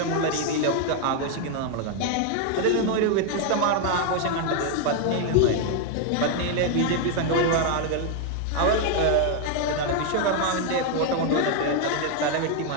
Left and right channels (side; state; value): both; different; correlation 0.00